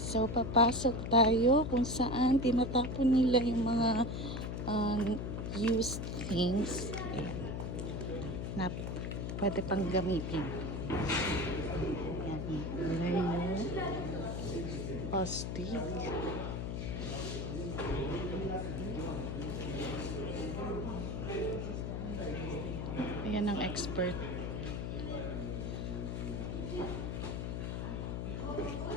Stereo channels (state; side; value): noise; left; hum, 3 dB below the sound